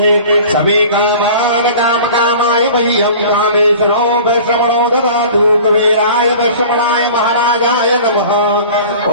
समे कामान् कामकामाय वह्यं कामेश्वरो वैश्रवणो ददातु कुबेराय वैश्रवणाय महाराजाय नमः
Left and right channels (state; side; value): inverted; both; correlation -0.42